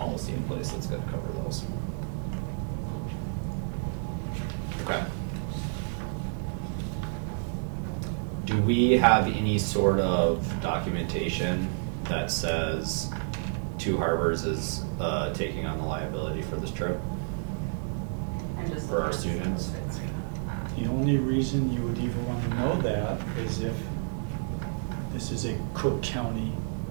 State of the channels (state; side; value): silent; left; digital silence